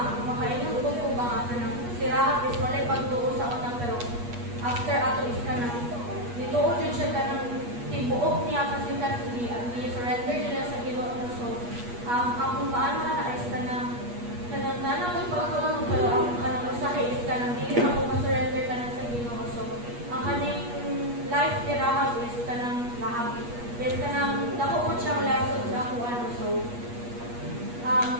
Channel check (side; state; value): left; late; 8.3 ms